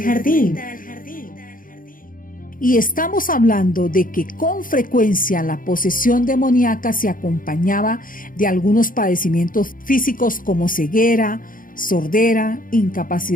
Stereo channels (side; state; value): right; late; 0.40 ms